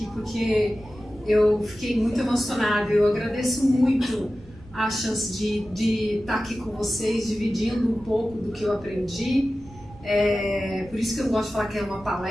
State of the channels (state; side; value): noise; right; rumble, 20 dB below the sound